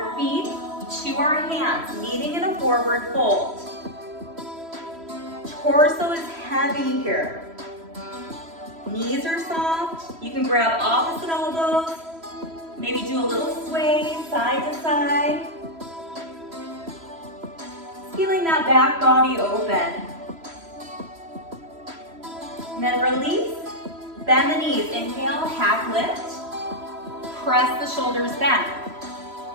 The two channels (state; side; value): late; left; 3.0 ms